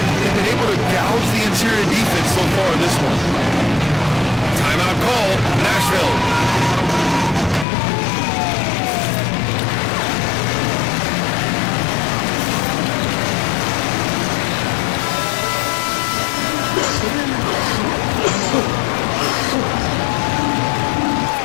They've been able to gouge the interior defense so far in this one. Timeout call, Nashville.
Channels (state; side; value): drops out; right; at 7.7 s